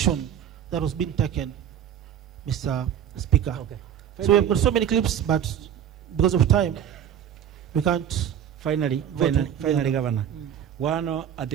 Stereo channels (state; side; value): quieter; left; 9.5 dB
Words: that was being taken, Mr. Speaker. Okay. So we've got so many clips, but because of time, we can't. Finally, Governor. Mm. At